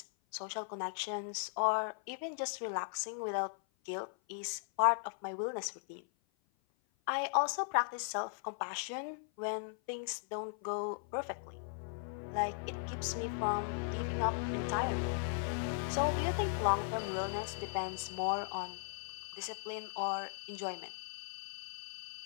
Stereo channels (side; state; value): right; silent; 53 dB below the other